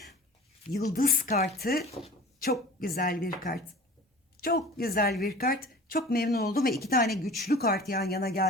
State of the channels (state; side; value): normal; both; correlation 0.42